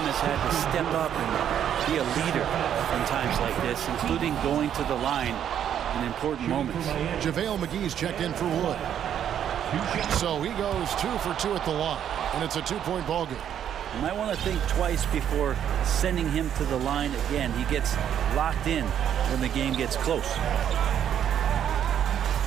has had to step up and be a leader in times like this, including going to the line in important moments. JaVale McGee's checked in for Wood. So he goes 2 for 2 at the line, and it's a 2-point ball game. You might want to think twice before sending him to the line again. He gets locked in when the game gets close.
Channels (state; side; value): quieter; left; 9.6 dB